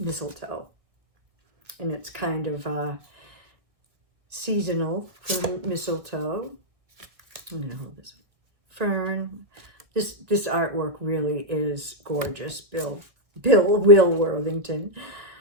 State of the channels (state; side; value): late; left; 1.6 ms